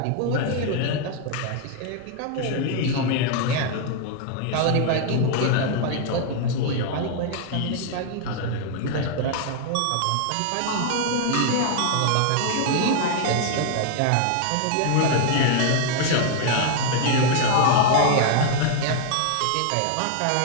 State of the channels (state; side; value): different; both; correlation 0.00